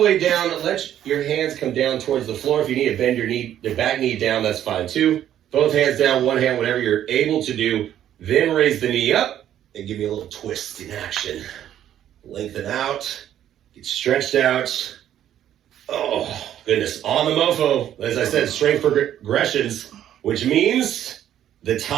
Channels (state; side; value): quieter; left; 11.1 dB